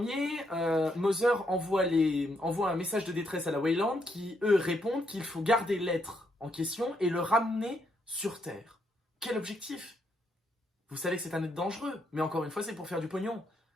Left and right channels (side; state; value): both; normal; correlation 0.76